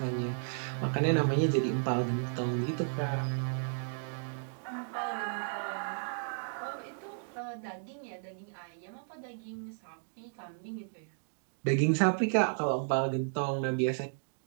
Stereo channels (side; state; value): left; silent; digital silence